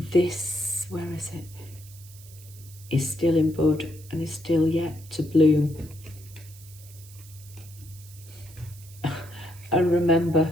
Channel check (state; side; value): noise; right; hiss, 21 dB below the sound